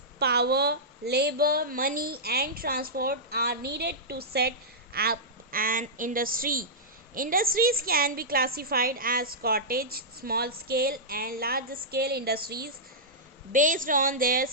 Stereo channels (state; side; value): normal; both; correlation -0.12